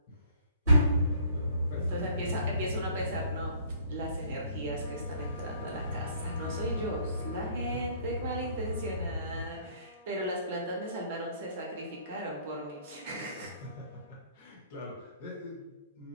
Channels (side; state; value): both; inverted; correlation -0.57